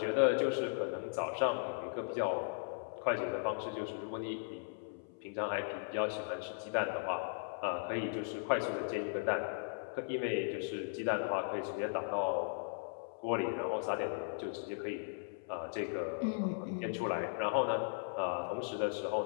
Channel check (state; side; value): silent; right; 53 dB below the other